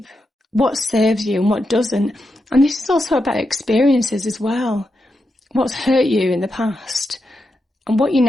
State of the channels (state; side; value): normal; both; correlation 0.86